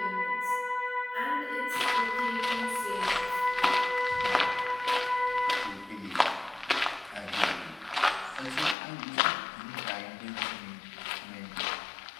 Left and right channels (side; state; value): right; drops out; at 8.8 s